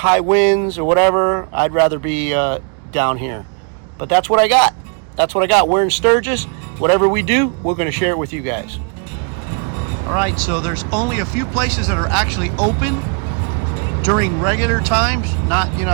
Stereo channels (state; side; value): quieter; left; 39.6 dB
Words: winds, or whatever, I'd rather be down here. But that's what I got. That's what I got. We're in Sturgis. Whatever we do, we're going to share it with you guys. All right, so there's only a few places that are actually open during regular times. Not,